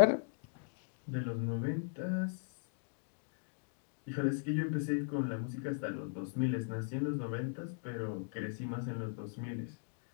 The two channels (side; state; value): right; silent; digital silence